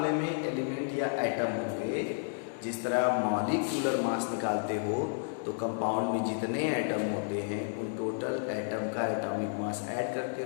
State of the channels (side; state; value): right; silent; digital silence